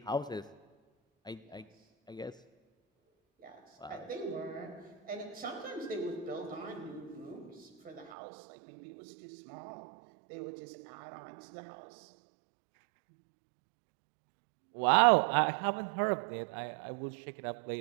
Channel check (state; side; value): drops out; left; at 8.2 s